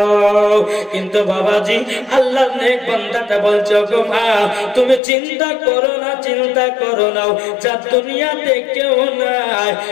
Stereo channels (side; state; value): right; drops out; at 5.0 s